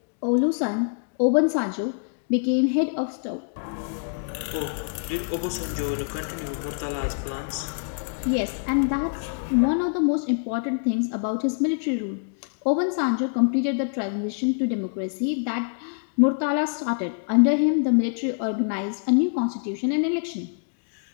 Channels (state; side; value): silent; right; digital silence